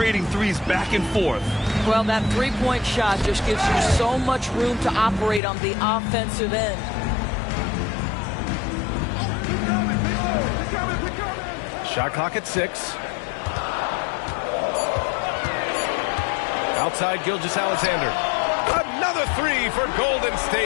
threes back and forth. Well, that three-point shot just gives you so much room to operate on the offensive end. Shot clock at 6. Outside Gilgeous-Alexander. Another 3 for Golden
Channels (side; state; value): right; drops out; at 5.4 s